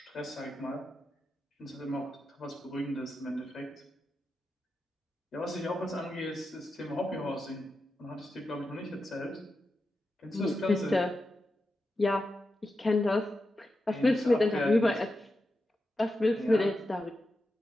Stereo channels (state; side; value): normal; both; correlation 0.89